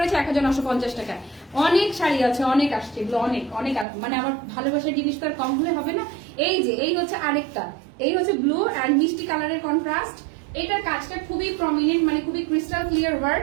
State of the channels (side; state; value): left; drops out; at 3.9 s